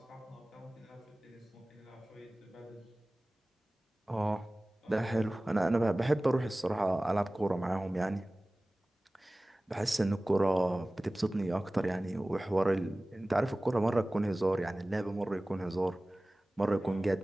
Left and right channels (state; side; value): normal; both; correlation 0.98